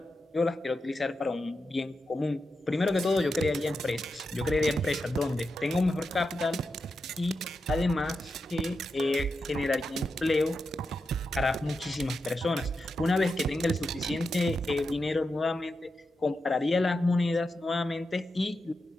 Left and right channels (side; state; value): both; normal; correlation 0.88